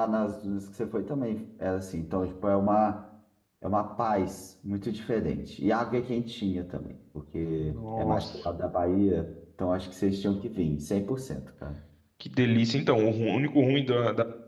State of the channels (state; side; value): identical; both; correlation 1.00